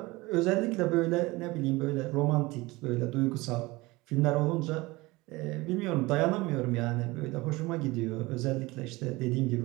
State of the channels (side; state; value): left; quieter; 21.8 dB